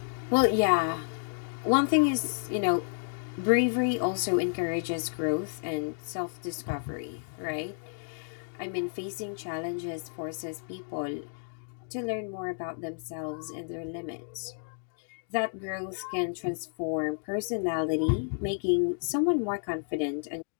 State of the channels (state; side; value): silent; right; digital silence